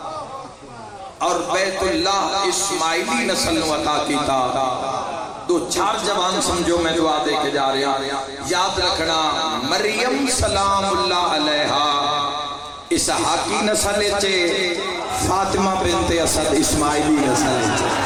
اور بیت اللہ اسماعیلی نسل نو عطا کیتا دو چار جوان سمجھو میں دعا دے کے جا رہا یاد رکھنا مریم سلام اللہ علیہا اسحاقی نسل چے فاطمہ بنت اسد اسماعیلی نسل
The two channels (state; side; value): identical; both; correlation 1.00